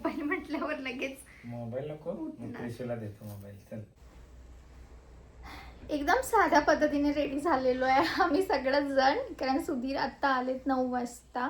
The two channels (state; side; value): identical; both; correlation 1.00